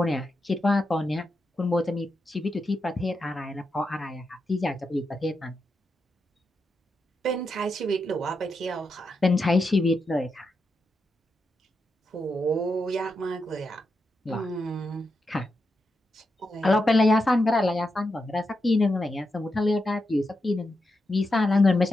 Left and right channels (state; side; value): normal; both; correlation 0.86